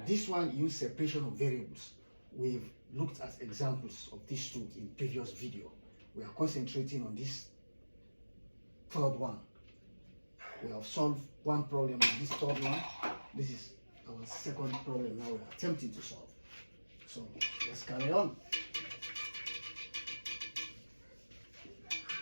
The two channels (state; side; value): inverted; both; correlation -1.00